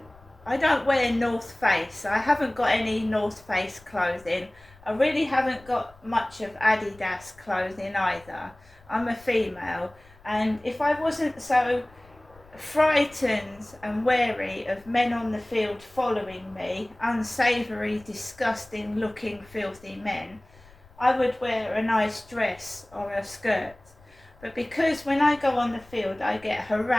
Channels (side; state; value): left; noise; rumble, 26 dB below the sound